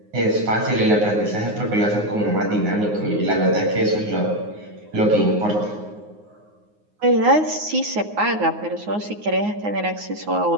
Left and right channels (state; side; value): late; left; 9.6 ms